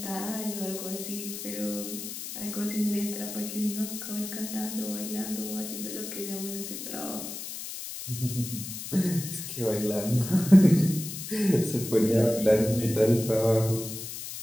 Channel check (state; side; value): noise; left; hiss, 8 dB below the sound